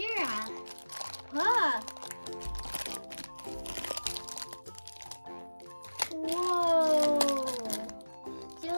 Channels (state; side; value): inverted; both; correlation -1.00